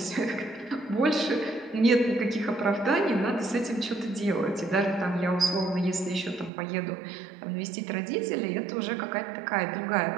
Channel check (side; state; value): left; drops out; at 6.5 s